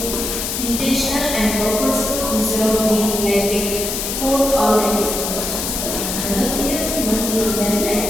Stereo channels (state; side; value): noise; left; hiss, 3 dB below the sound